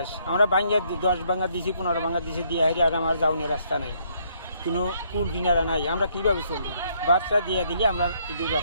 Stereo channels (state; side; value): inverted; both; correlation -0.69